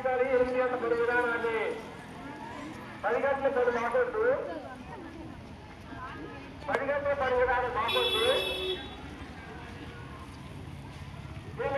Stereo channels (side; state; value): both; identical; correlation 1.00